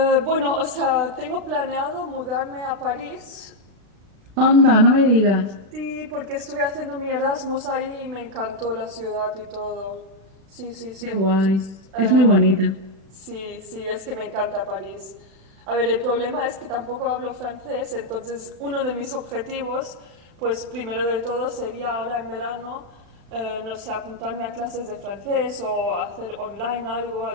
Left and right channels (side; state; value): left; late; 36 ms